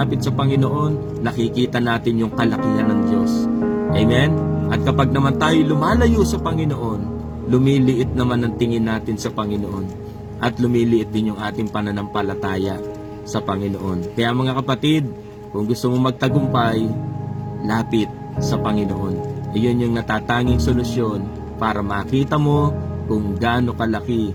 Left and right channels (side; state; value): both; identical; correlation 1.00